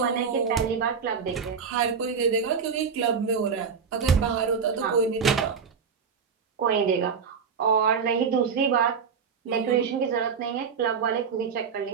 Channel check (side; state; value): left; quieter; 6.2 dB